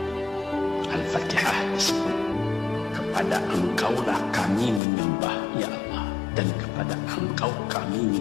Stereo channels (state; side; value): drops out; right; at 4.8 s